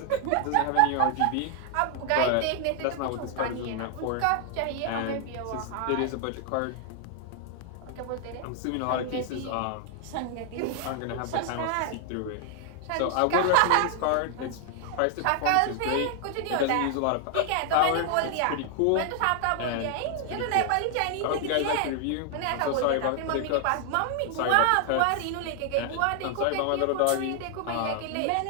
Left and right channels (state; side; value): different; both; correlation 0.00